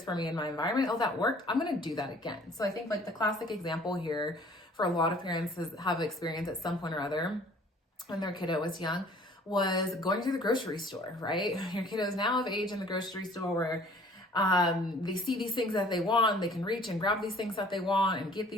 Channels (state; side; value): normal; both; correlation 0.53